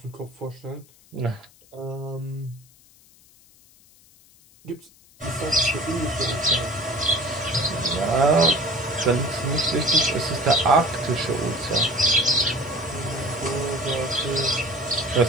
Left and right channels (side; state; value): left; noise; hiss, 28 dB below the sound